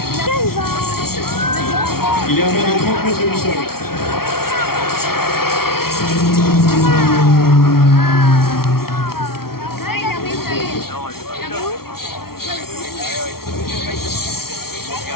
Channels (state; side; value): late; right; 0.94 ms